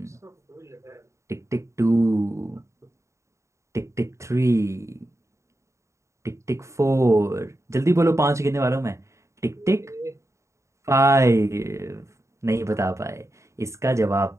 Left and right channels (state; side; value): late; left; 0.14 ms